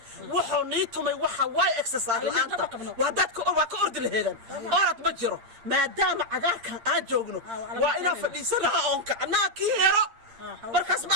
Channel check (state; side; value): late; left; 8.7 ms